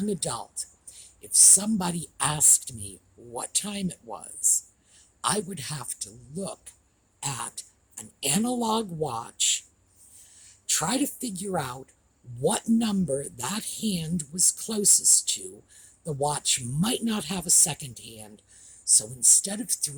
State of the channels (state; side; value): identical; both; correlation 1.00